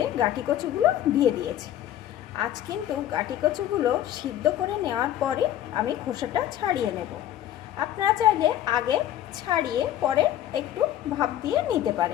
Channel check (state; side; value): quieter; right; 12.0 dB